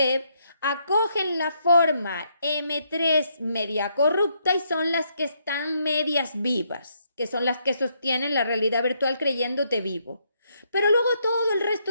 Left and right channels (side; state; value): both; inverted; correlation -0.74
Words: acogen la forma M3 media corrupta y son las que están medias vivas, que son las que sostienen la realidad virtual creyéndote vivo. Pero luego todo el